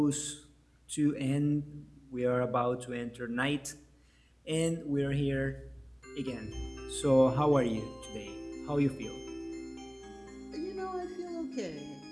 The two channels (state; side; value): identical; both; correlation 1.00